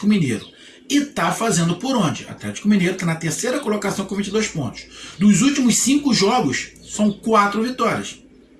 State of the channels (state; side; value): identical; both; correlation 1.00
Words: Mineiro. E tá fazendo por onde? O Atlético Mineiro está na 3ª colocação com 22 pontos. Dos últimos 5 jogos, são 4 vitórias.